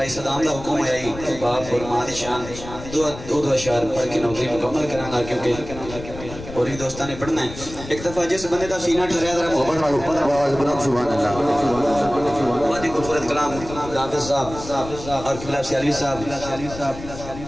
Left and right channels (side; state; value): left; noise; rumble, 12 dB below the sound